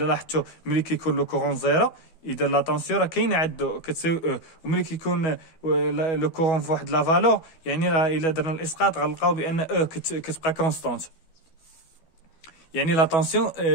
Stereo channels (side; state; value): right; late; 12 ms